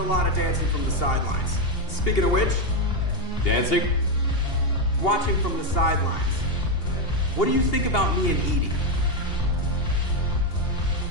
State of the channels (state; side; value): late; right; 2.8 ms